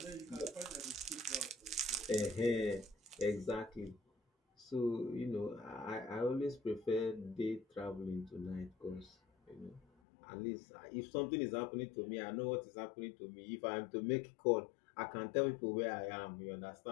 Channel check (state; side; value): drops out; right; at 9.9 s